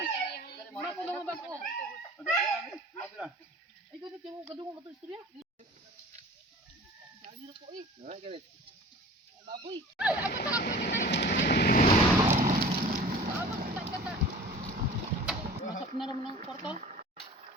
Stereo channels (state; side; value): normal; both; correlation 0.42